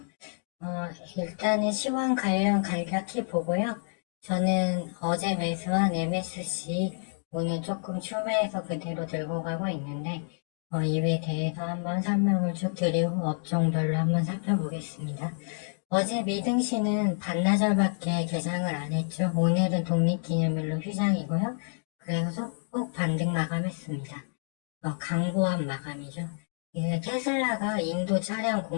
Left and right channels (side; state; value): right; silent; digital silence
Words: 일단은 시황 관련 간략히 보고요. 저는 어제 매수한 MSC 오늘 조금 추매해서 그대로 들고 가고 있는데 이에 대해서 한번 설명을 쭉 드리고 업종별로 한번 살펴보겠습니다. 어제 미등시는 반나절밖에 개장을 안 했죠. 오늘은 독립기념일로 휴장이고요. 그래서 꼭 반등 마감했습니다. 강보한 마감이죠. 이게 테슬라가 인도 차량